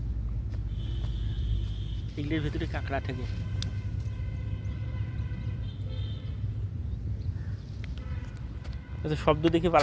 এগুলির ভিতরে কাঁকড়া থাকে। আচ্ছা, শব্দ দেখে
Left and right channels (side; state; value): both; identical; correlation 1.00